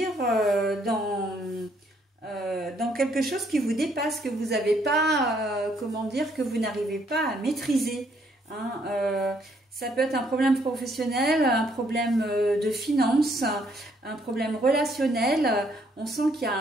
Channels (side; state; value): both; normal; correlation 0.69